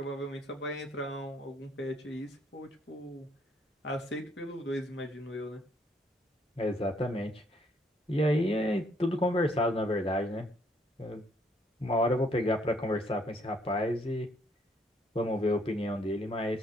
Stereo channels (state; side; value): normal; both; correlation 0.68